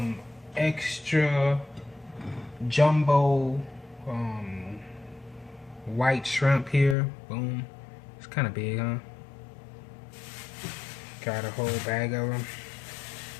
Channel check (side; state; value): right; drops out; at 7.0 s